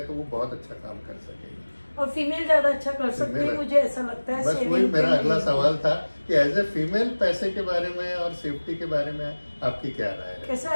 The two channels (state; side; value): inverted; both; correlation -1.00